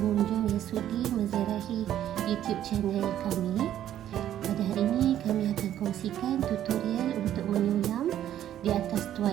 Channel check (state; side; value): quieter; left; 11.4 dB